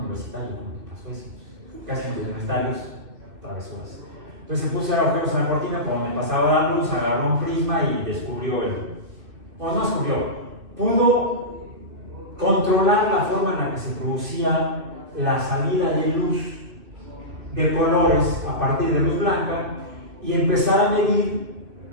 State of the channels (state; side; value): late; left; 2.6 ms